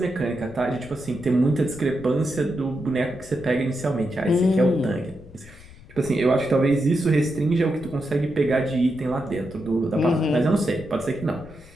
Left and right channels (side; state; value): left; noise; rumble, 20 dB below the sound